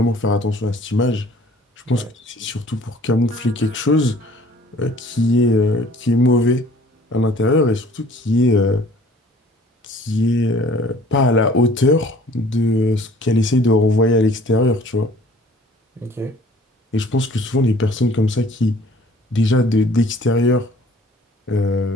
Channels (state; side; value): normal; both; correlation 0.52